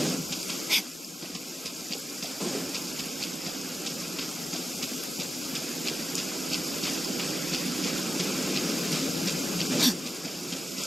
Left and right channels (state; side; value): normal; both; correlation 0.93